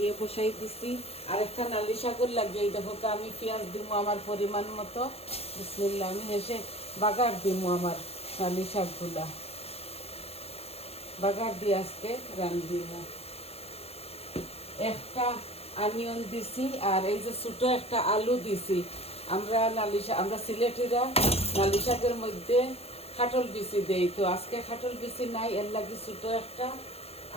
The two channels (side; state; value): right; late; 0.29 ms